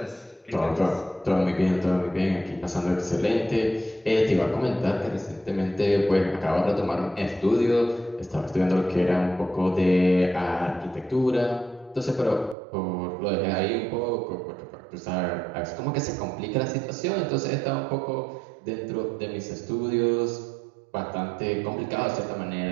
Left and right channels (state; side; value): drops out; left; at 12.6 s